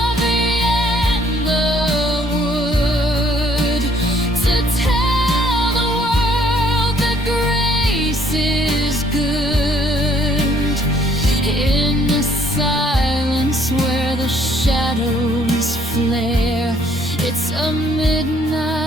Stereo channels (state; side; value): normal; both; correlation 0.63